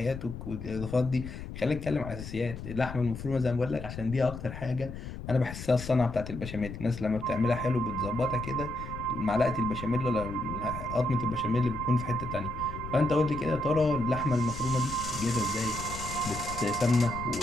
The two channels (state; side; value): noise; left; rumble, 10 dB below the sound